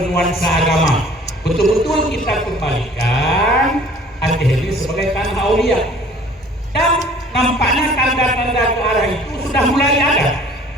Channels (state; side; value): normal; both; correlation 0.51